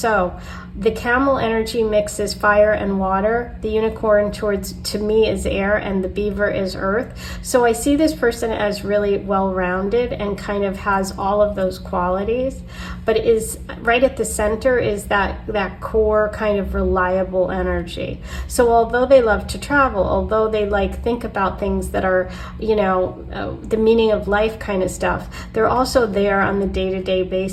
the camel energy mixes fire and water. The unicorn to me is air, and the beaver is earth. So I see this person as really well-rounded and kind of has all of those qualities, but is right at the center is that core kind of reliable energy. So although they love to travel, although they think about things that are, you know, the meaning of life kind of stuff, they're also there on the day-to-day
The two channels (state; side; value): identical; both; correlation 1.00